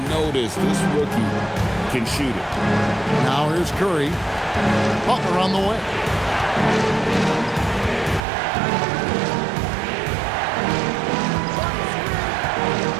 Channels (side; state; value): left; drops out; at 8.2 s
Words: notice this rookie can shoot it. Now here's Curry. Butler on the way.